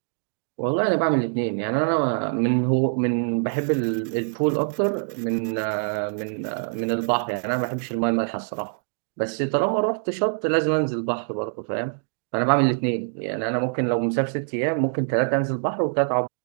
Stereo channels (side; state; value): left; silent; digital silence